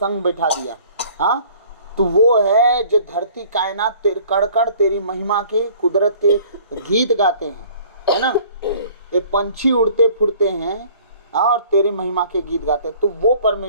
बैठा दिया। हाँ, तो वो है जो धरती कायनात कण कण तेरी महिमा के, कुदरत के गीत गाते हैं, है ना। ये पंछी उड़ते फुड़ते हैं और तेरी महिमा के गीत गाते हैं। तो वो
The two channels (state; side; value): inverted; both; correlation -0.53